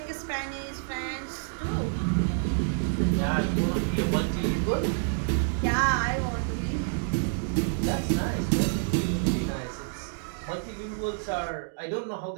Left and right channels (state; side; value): silent; left; digital silence